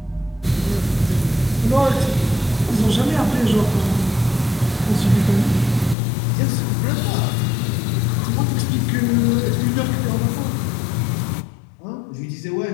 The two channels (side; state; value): right; drops out; at 6.0 s